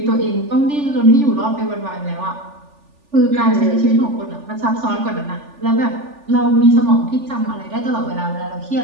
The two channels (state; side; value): late; left; 3.4 ms